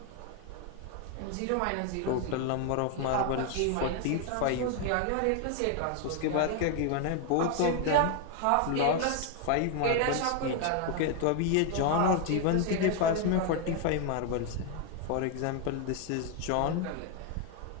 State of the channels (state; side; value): different; both; correlation 0.01